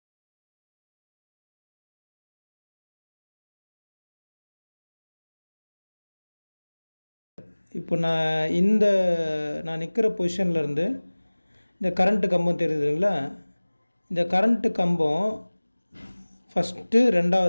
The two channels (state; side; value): inverted; both; correlation -1.00